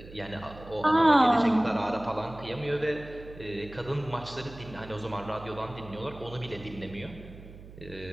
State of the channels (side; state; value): right; noise; hum, 17 dB below the sound